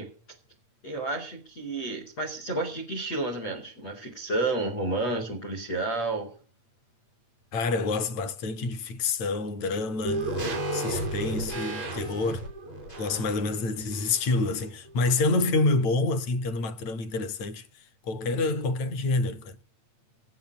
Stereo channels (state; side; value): late; right; 8.7 ms